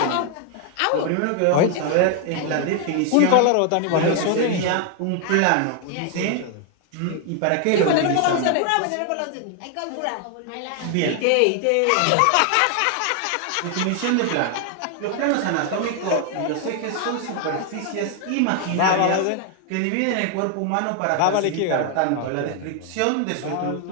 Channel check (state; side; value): different; both; correlation 0.00